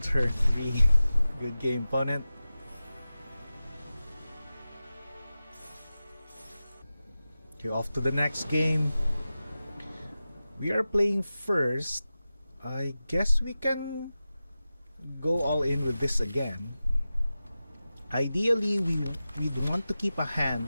3. Good game, opponent. Okay, off to the next game. We are playing first. I guess we can go all in with this again. Ideally, we'd want to keep a hand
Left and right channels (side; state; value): both; inverted; correlation -0.94